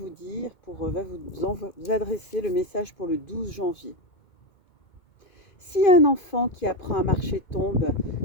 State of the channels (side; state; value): right; late; 2.2 ms